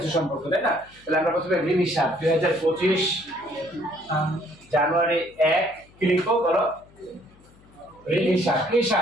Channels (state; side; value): noise; left; hum, 27 dB below the sound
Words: সম্পর্ক, তাই না? তাহলে আমরা প্রথমে ঋণ হিসাব 2025 জানুয়ারি 1 কি লিখবো বলো? ঋণ হিসাব। কি